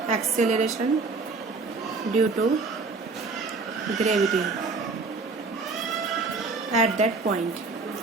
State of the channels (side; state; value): left; quieter; 4.1 dB